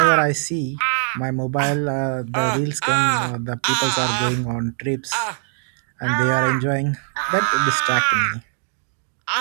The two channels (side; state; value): left; silent; digital silence